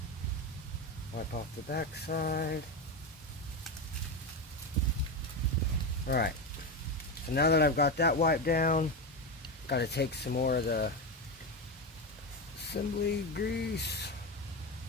Wipe off the back side. Alright. So now that I've got that wiped down, got to take some more of the assembly grease.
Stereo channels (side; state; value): both; normal; correlation 0.16